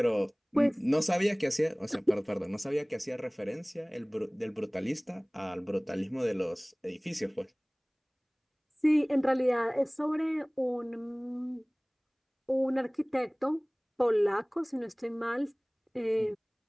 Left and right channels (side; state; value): both; identical; correlation 1.00